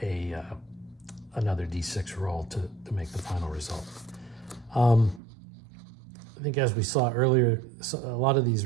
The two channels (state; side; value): drops out; left; at 5.2 s